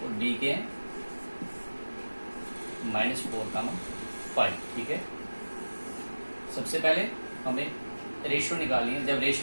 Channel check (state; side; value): inverted; both; correlation -1.00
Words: और बी के हैं -4, 5। ठीक है, सबसे पहले हमें रेशियो निकालनी है। जब